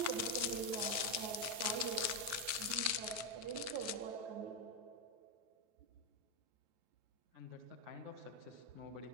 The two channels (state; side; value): late; left; 9.3 ms